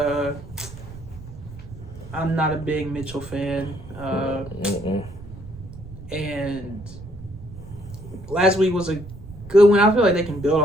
I'm not a big Mitchell fan. And last week was a good one. I feel like they can build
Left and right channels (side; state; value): right; noise; rumble, 16 dB below the sound